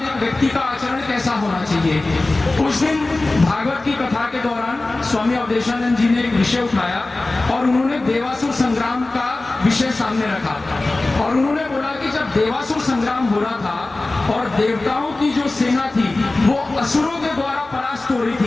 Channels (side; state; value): right; quieter; 3.0 dB